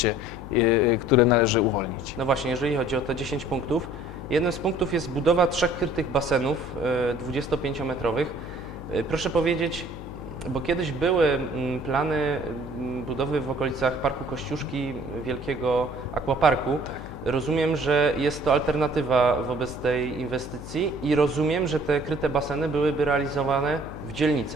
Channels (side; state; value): left; noise; hum, 12 dB below the sound